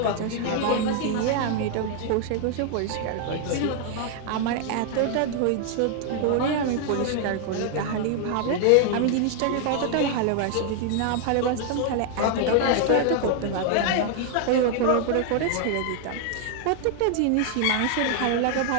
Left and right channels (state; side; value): different; both; correlation 0.00